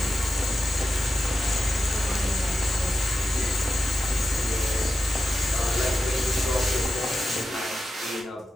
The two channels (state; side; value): normal; both; correlation 0.90